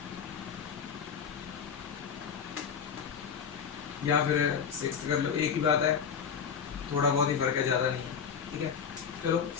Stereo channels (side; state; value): right; quieter; 7.0 dB